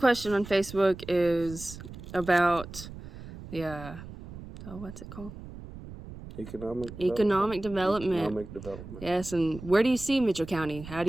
on Facebook is about the, what's it called? Economic development. Yes, and where do you see Mitchell County? How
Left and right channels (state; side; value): noise; right; rumble, 13 dB below the sound